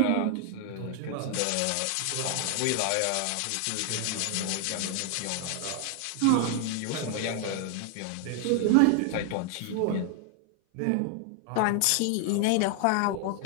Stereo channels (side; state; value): both; different; correlation 0.00